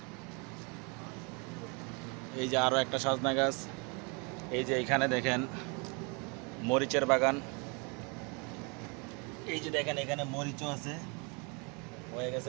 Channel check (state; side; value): quieter; left; 32.5 dB